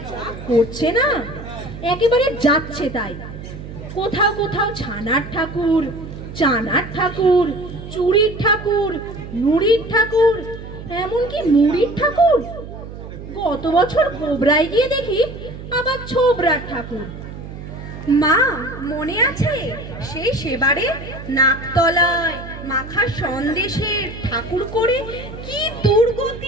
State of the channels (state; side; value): noise; right; hum, 12 dB below the sound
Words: যা করছে না, একেবারে যাচ্ছে তাই। কোথাও কোথাও ছানার ঠাকুর, চানার ঠাকুর, চুড়ির ঠাকুর, নুড়ির ঠাকুর, এমনকি মুড়ির ঠাকুর। গত বছর গোবরায় গিয়ে দেখি আবার ছোবরার ঠাকুর। মা, মনে আছে সেই সেবারে নাকতলায় মাখা সন্দেশের ঠাকুর করে কি